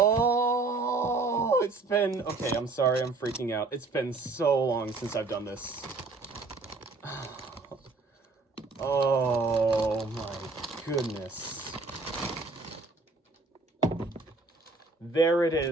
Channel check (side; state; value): left; quieter; 3.6 dB